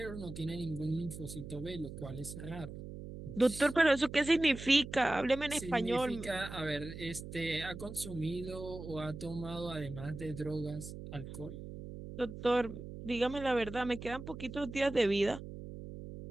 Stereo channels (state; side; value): noise; right; hum, 10 dB below the sound